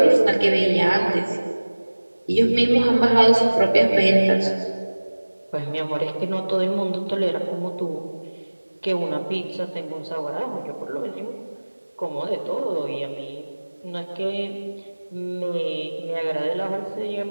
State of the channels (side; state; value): both; inverted; correlation -1.00